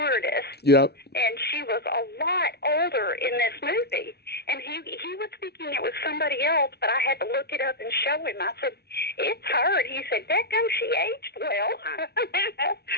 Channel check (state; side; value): late; right; 0.48 ms